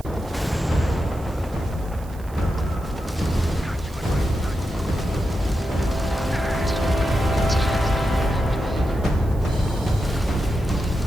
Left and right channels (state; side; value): noise; right; hiss, 24 dB below the sound